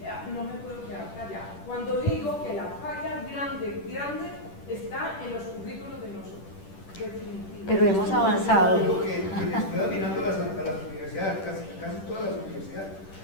no me puedo quedar callada. Cuando digo que la falla grande está en los currículos de nosotros. Pero hemos avanzado. Lo que estoy mirando a las universidades, casi todas las universidades,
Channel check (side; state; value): right; late; 10 ms